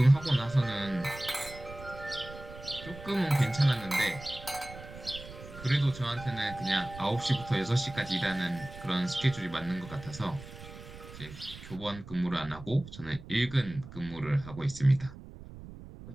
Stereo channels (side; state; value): right; noise; rumble, 15 dB below the sound